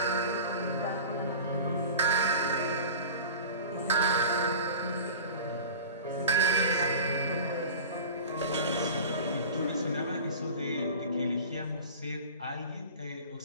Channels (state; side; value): inverted; both; correlation -0.38